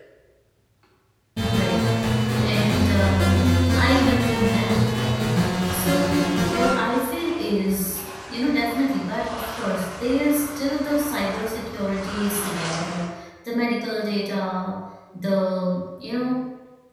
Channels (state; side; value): identical; both; correlation 1.00